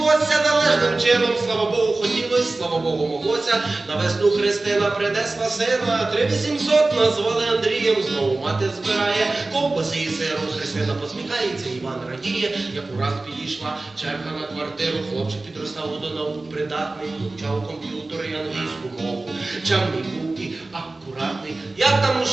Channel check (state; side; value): quieter; left; 3.2 dB